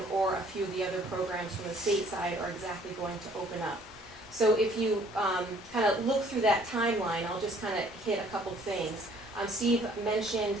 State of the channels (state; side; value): normal; both; correlation 0.59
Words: or a few of the other programs from the state side are exactly going to open up. So if you kind of look through that timeline, I'll just kind of hit a couple things. Steve